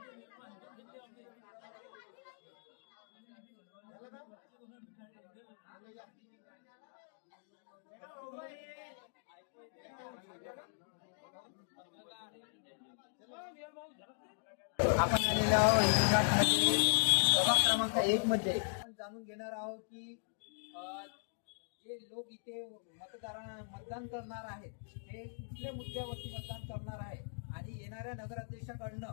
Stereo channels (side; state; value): right; silent; digital silence